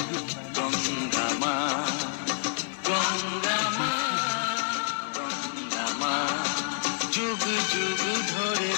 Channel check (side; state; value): right; silent; digital silence